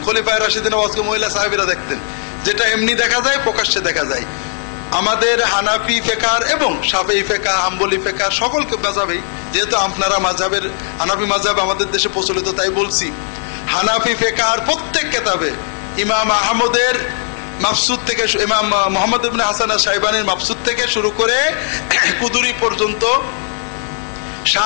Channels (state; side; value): silent; right; 60 dB below the other